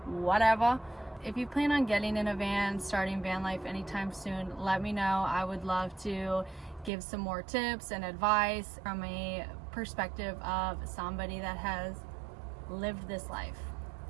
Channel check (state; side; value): drops out; left; at 6.9 s